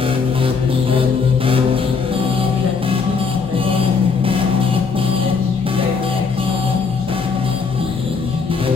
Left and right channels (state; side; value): quieter; right; 5.1 dB